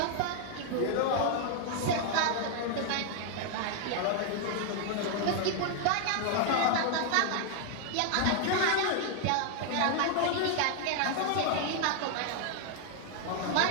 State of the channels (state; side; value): different; both; correlation 0.00